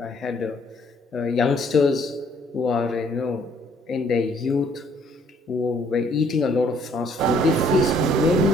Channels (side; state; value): both; normal; correlation 0.63